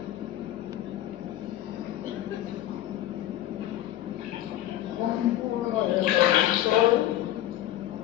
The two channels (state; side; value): quieter; right; 13.6 dB